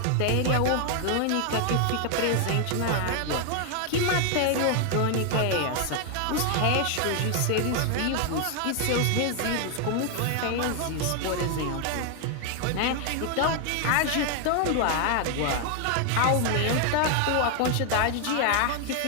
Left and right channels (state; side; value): different; both; correlation 0.00